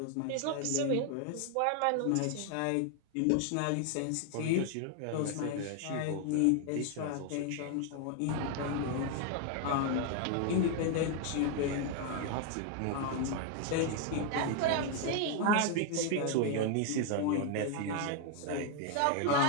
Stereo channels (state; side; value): different; both; correlation 0.00